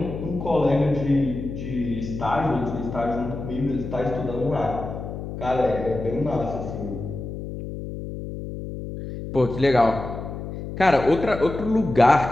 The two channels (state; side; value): noise; left; hum, 8 dB below the sound